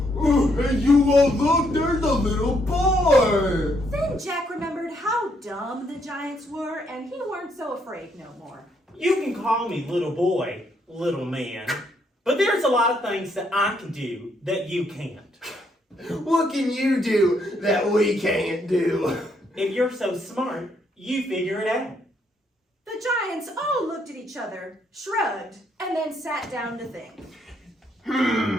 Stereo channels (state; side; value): normal; both; correlation 0.73